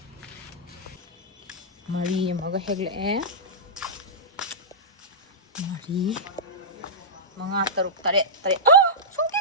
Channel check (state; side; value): normal; both; correlation -0.15